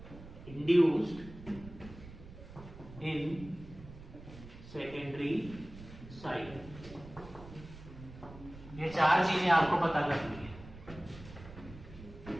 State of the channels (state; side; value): noise; right; rumble, 16 dB below the sound